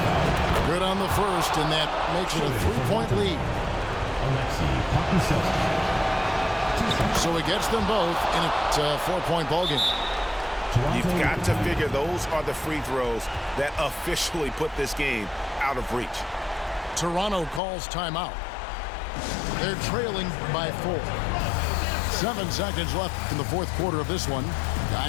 Good on the first, and that makes it a 3-point lead. So he gets them both in a 4-point ballgame. You've got to figure those are the free throws that officially put this game out of reach. Toronto calls timeout. They're trailing by 4. 7 seconds left in the fourth quarter of this one.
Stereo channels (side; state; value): right; drops out; at 17.6 s